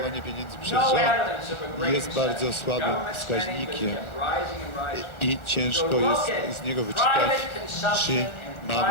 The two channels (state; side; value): late; right; 1.3 ms